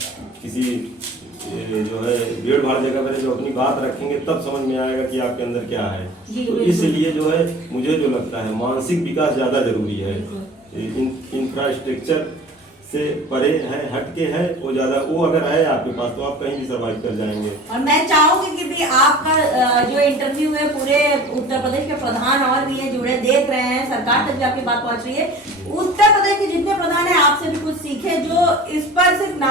किसी जो है भीड़ भाड़ जगह पर जो अपनी बात रखेंगे, तब समझ में आएगा कि आपके अंदर क्या है। तो इसलिए जो है मुझे जो लगता है मानसिक विकास ज़्यादा जरूरी है, इंफ्रास्ट्रक्चर से परे है, हटके है, वो ज़्यादा, वो अगर है आपके पास तो आप कहीं भी सर्वाइव कर जाएंगे। और मैं चाहूंगी कि भी आपका जो इंटरव्यू है पूरे उत्तर प्रदेश के प्रधान और भी है जुड़े देख रहे हैं, सरकार तक भी आपकी बात पहुंच रही है, उत्तर प्रदेश के जितने प्रधान है आपसे भी कुछ सीखे, जो इस पर सिर्फ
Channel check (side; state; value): both; normal; correlation 0.42